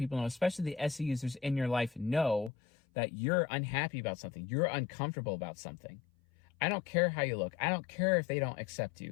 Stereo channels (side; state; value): right; drops out; at 2.5 s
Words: know, especially the SE users in your life, know that you're unhappy about something. You're uncomfortable about something. I don't care how you look. I don't care if they don't accept